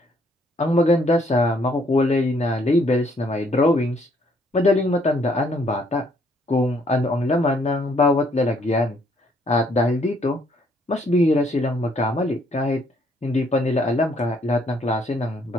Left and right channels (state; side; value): normal; both; correlation 0.67